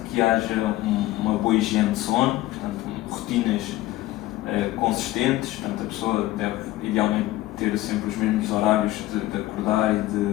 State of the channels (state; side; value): quieter; right; 16.6 dB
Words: que haja uma boa higiene de sono, portanto, rotinas consistentes, portanto, a pessoa deve idealmente ter sempre os mesmos horários de acordar e